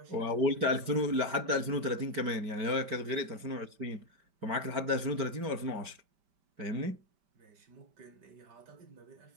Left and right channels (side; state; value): left; late; 5.1 ms